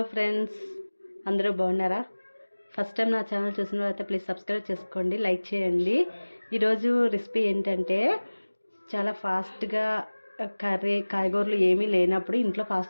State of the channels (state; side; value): inverted; both; correlation -1.00